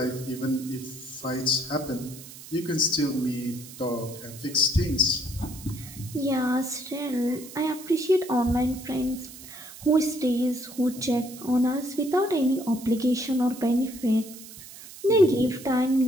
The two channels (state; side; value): noise; right; hiss, 16 dB below the sound